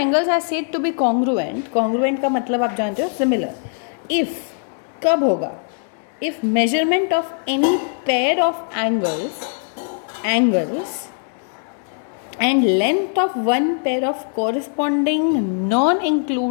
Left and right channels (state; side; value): silent; right; 56 dB below the other